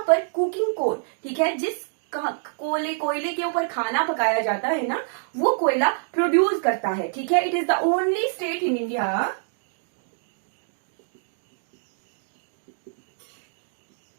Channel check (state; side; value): silent; left; digital silence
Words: पर कुकिंग कोल, ठीक है, जिस कोयले के ऊपर खाना पकाया जाता है ना, वो कोयला प्रोड्यूस करता है। ठीक है, it is the only state in India